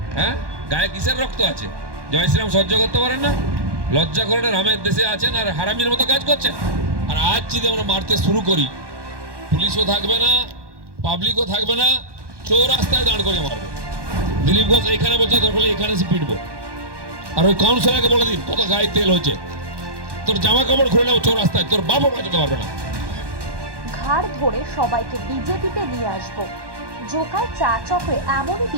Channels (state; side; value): late; left; 1.1 ms